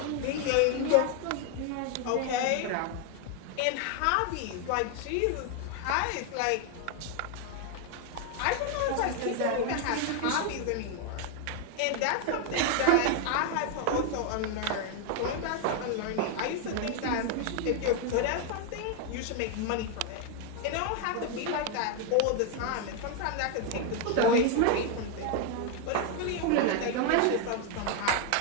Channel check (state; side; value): different; both; correlation 0.01